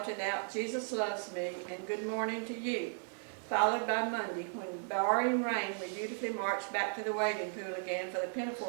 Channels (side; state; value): left; silent; 54 dB below the other